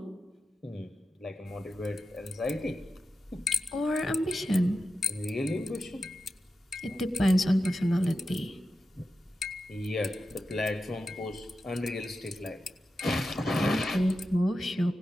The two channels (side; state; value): both; normal; correlation 0.91